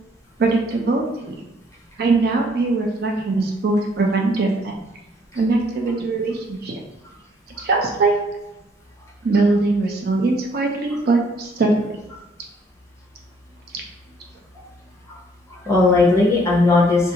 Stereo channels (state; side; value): normal; both; correlation 0.63